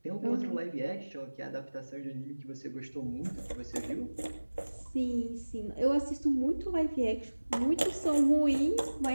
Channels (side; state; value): both; inverted; correlation -1.00